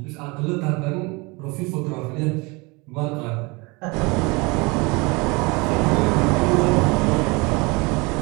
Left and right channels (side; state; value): left; quieter; 26.7 dB